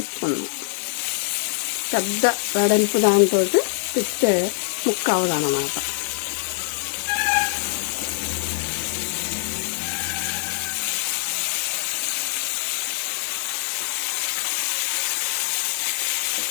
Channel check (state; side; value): silent; right; 55 dB below the other